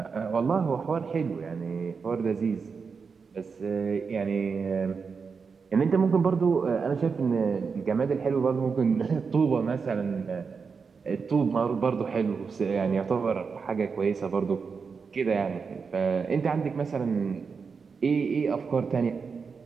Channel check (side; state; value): left; quieter; 5.4 dB